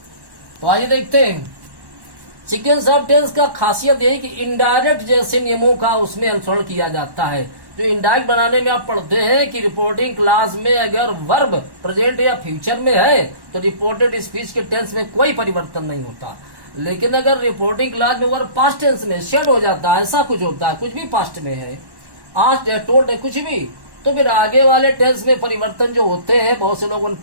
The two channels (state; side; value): late; left; 1.1 ms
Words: तो आइए देखते हैं। सीक्वेंस ऑफ टेंस का खासियत यही कि इनडायरेक्ट जैसे नियमों का उसमें अनुसरण किया जाता है। जो इनडायरेक्ट बनाने में आप पढ़ते हैं कि रिपोर्टिंग क्लास में अगर वर्ब प्रेजेंट या फ्यूचर में है तो रिपोर्टेड स्पीच के टेंस में कोई परिवर्तन नहीं होता। लेकिन अगर रिपोर्टिंग क्लास में वर्ब पास्ट टेंस में शेड हो जाता है, ऐसा कुछ होता है, कुछ भी पास्ट में है, आस्क्ड है, टोल्ड है, कुछ भी, तो फिर आगे वाले टेंस में परिवर्तन जो होते हैं, बहुत से लोगों ने